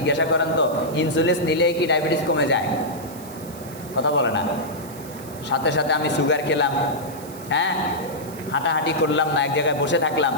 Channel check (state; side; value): noise; right; hiss, 18 dB below the sound